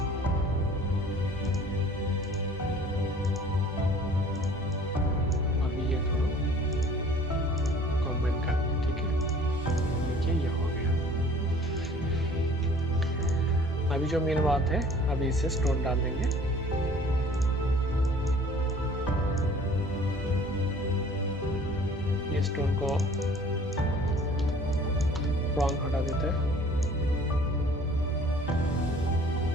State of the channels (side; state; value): both; normal; correlation 0.51